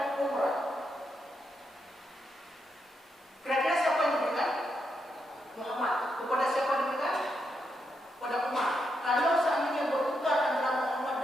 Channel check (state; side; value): normal; both; correlation 0.82